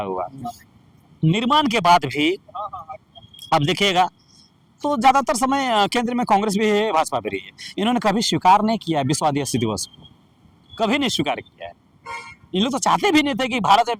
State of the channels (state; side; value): identical; both; correlation 1.00